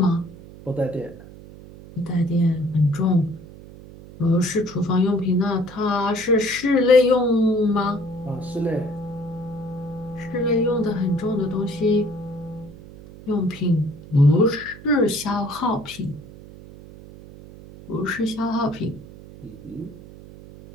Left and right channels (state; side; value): noise; right; hum, 18 dB below the sound